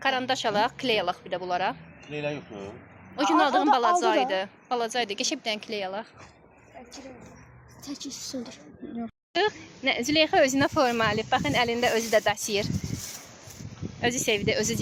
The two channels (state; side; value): identical; both; correlation 1.00